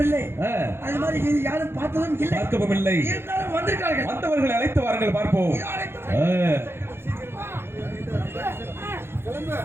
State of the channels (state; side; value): late; left; 0.11 ms